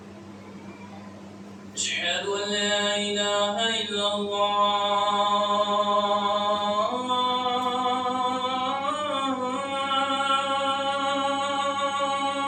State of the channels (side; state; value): both; identical; correlation 1.00